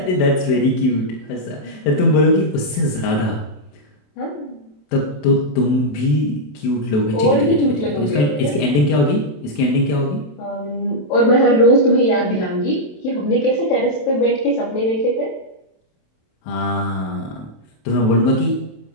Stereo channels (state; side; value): late; right; 27 ms